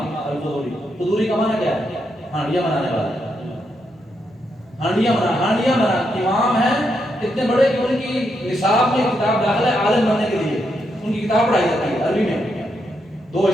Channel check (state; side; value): normal; both; correlation 0.81